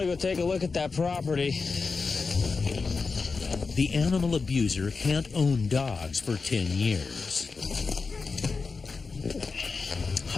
go take a look at that property. The animal abuser can't own dogs for 10 years.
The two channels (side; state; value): right; quieter; 4.5 dB